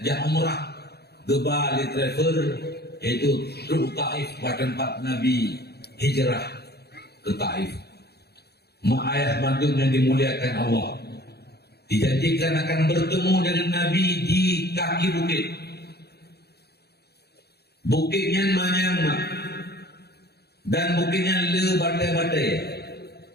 jak umrah geba li travel, yaitu truk Taif pada tempat Nabi hijrah ke Taif. Mak ayah mandum yang dimuliakan Allah, dijanjikan akan bertemu dengan Nabi di kaki bukit. Bukitnya manyang dan bukitnya le batai-batai,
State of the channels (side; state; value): right; late; 0.47 ms